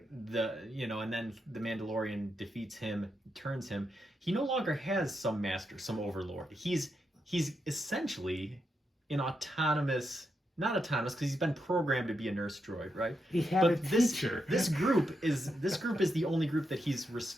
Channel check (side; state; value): both; normal; correlation 0.84